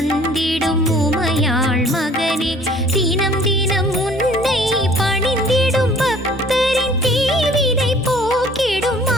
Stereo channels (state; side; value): normal; both; correlation 0.53